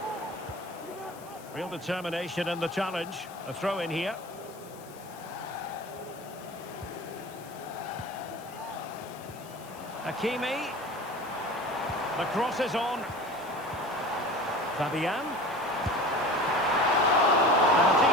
Real determination in the challenge. A throw in here. Hakimi. The cross is on. Fabian. And a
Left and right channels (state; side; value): noise; left; hiss, 21 dB below the sound